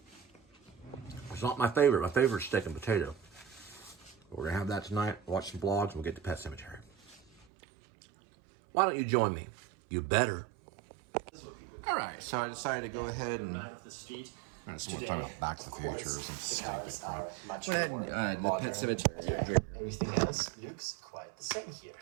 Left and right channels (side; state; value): left; drops out; at 7.5 s